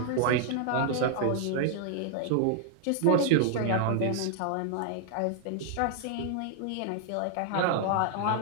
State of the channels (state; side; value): different; both; correlation 0.00